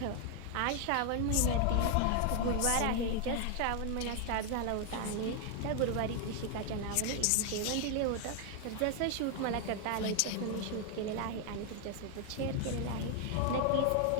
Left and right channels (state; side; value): different; both; correlation 0.00